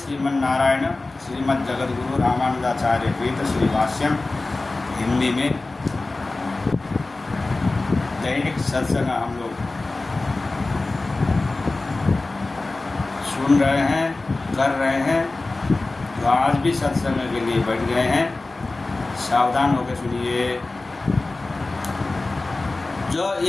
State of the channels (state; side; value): quieter; right; 3.2 dB